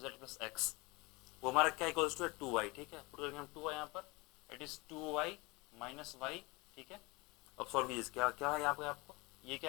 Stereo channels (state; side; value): quieter; right; 25.0 dB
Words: plus x, वो हमारा क्या इक्वल्स टू है 2y, ठीक है। पुट करेंगे हम 2y यहाँ पर, it is 2y minus y, ठीक है। अब सॉल्व कीजिए, क्या क्या है यहाँ पे आपको, ये